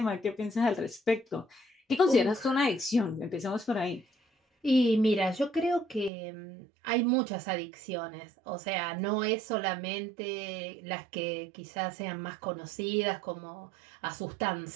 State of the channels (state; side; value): drops out; left; at 6.1 s